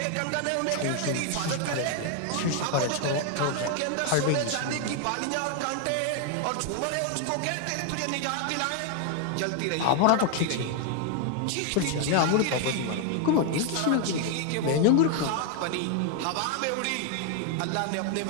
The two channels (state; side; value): different; both; correlation 0.00